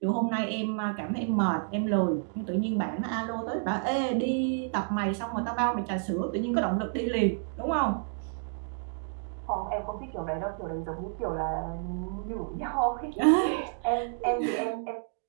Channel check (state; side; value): silent; left; digital silence